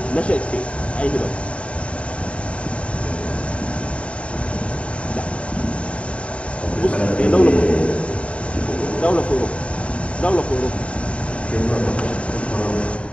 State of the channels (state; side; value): late; right; 0.062 ms